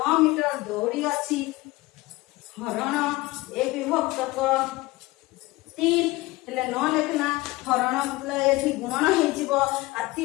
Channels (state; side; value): quieter; right; 20.5 dB